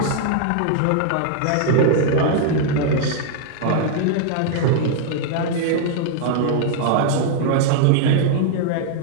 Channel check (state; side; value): different; both; correlation -0.01